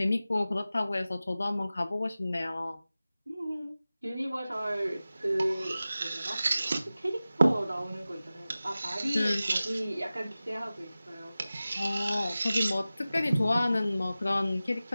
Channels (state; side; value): inverted; both; correlation -0.96